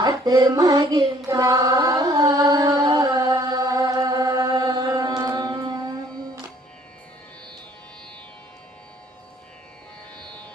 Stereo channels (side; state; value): both; normal; correlation 0.59